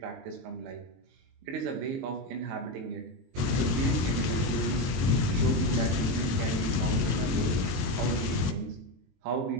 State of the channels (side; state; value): left; late; 22 ms